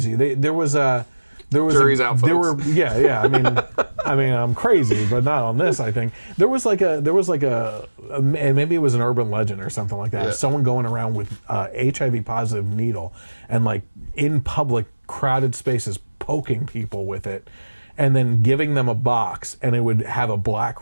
There was Jury's out, folks. There were I mean I'm crazy, but not on this. I think there was like a and maybe it was an urban legend or something like that. Yeah. Someone going around with HIV positive needle and like in public crowded spaces poking people with it, and then giving them a box, and it would have a black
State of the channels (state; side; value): inverted; both; correlation -1.00